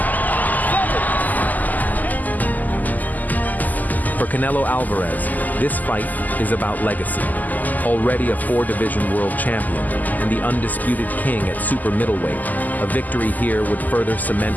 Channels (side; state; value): right; late; 0.082 ms